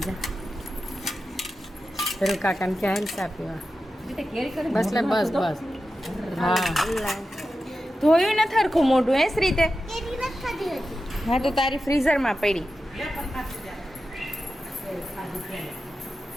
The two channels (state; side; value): normal; both; correlation 0.92